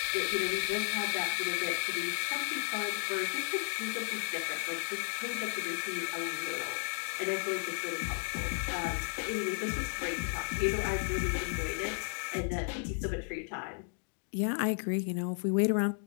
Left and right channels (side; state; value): right; silent; digital silence